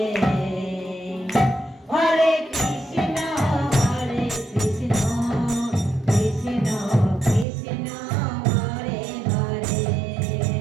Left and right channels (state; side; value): drops out; left; at 7.5 s